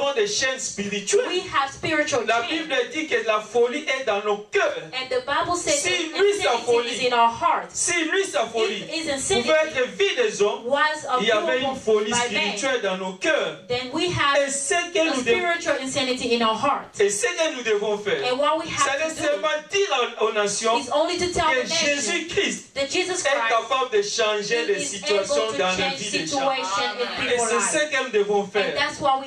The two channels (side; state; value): both; identical; correlation 1.00